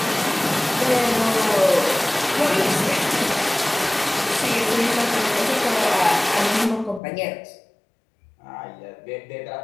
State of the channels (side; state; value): right; drops out; at 7.0 s